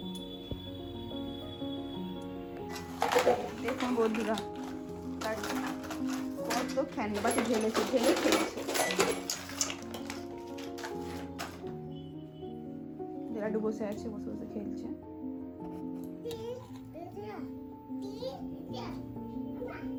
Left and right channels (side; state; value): both; identical; correlation 1.00